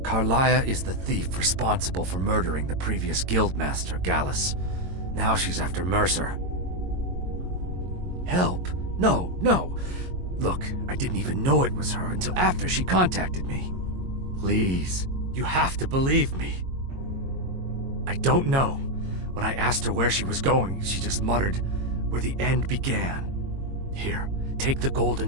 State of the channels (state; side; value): late; left; 22 ms